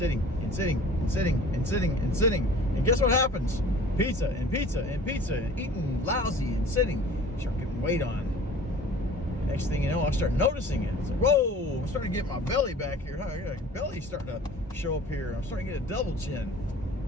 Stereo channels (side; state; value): both; normal; correlation 0.46